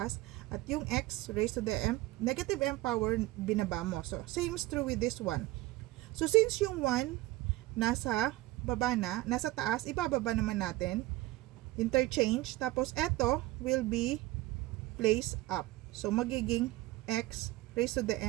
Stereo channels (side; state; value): left; quieter; 18.3 dB